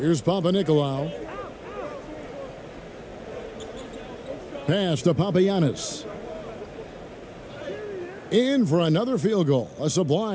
Papanikolaou. Pass to Papagiannis. In for another field goal. A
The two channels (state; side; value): identical; both; correlation 1.00